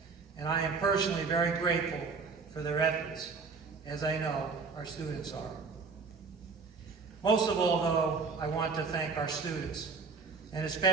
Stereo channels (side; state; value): left; quieter; 4.8 dB